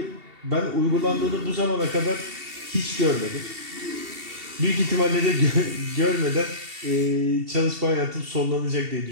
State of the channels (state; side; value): late; left; 2.7 ms